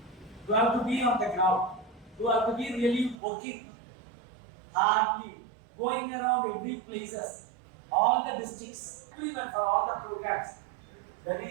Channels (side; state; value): left; drops out; at 3.2 s